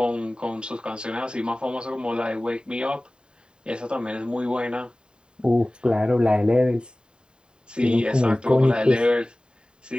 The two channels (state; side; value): late; left; 0.049 ms